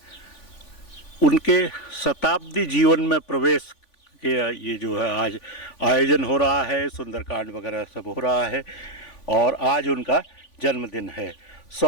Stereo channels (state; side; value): late; right; 3.5 ms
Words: उनके शताब्दी जीवन में प्रवेश के ये जो है आज आयोजन हो रहा है, सुंदरकांड वगैरह सब हो रहा है, और आज उनका जन्मदिन है।